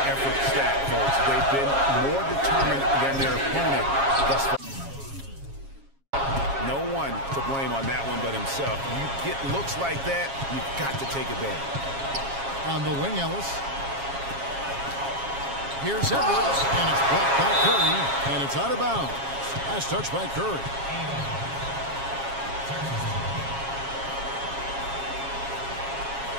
effort stat, folks. They've been more determined than their opponent thus far. No one to blame on that one but himself. You get looks like that, you've got to take advantage. On the wing, Ellis. Here's Edwards, and it's blocked by Curry, and it's out of bounds. Last touch by Curry.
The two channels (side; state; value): left; late; 7.3 ms